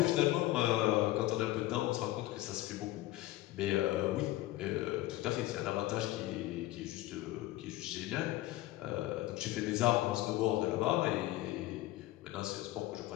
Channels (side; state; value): right; quieter; 16.5 dB